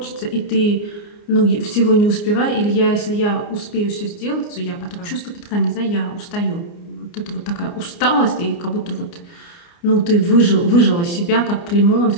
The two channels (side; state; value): right; late; 29 ms